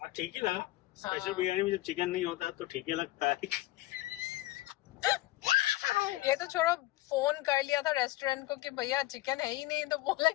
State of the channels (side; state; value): right; quieter; 17.6 dB